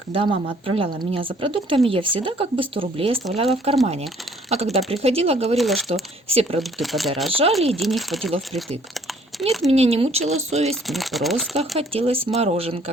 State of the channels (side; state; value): both; normal; correlation 0.60